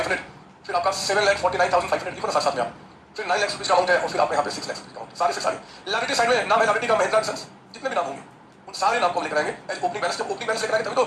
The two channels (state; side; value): identical; both; correlation 1.00